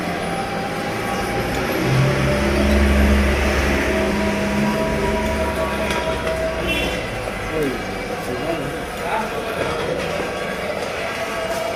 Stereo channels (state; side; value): identical; both; correlation 1.00